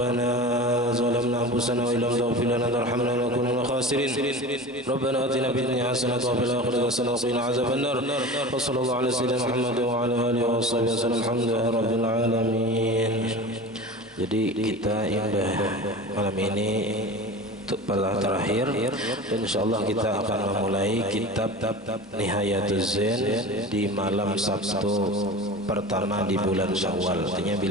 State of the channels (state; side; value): normal; both; correlation 0.33